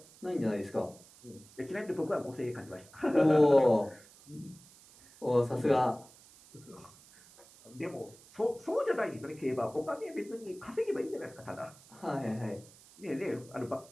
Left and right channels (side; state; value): right; noise; hiss, 23 dB below the sound